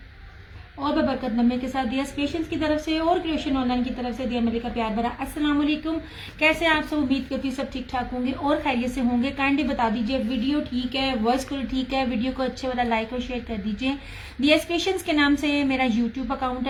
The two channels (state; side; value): identical; both; correlation 1.00